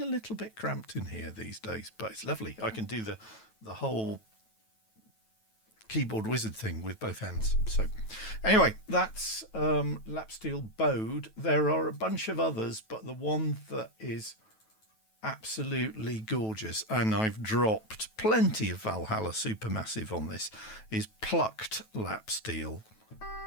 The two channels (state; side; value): late; right; 9.2 ms